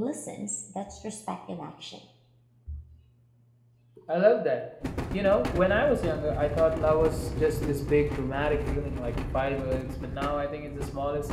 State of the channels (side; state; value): both; identical; correlation 1.00